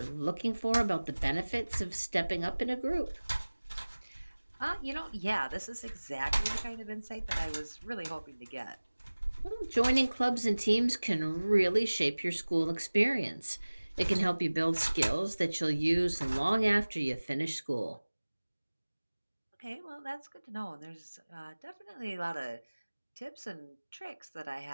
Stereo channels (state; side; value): inverted; both; correlation -1.00